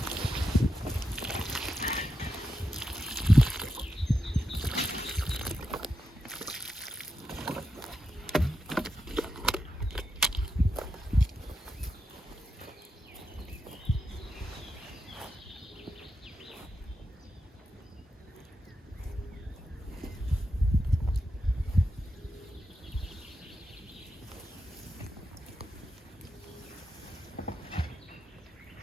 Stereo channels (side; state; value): both; normal; correlation 0.86